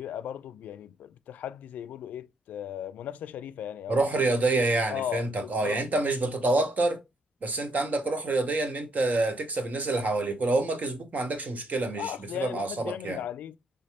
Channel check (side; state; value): both; normal; correlation 0.72